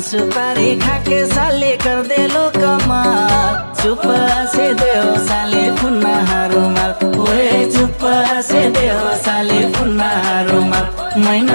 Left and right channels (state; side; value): inverted; both; correlation -1.00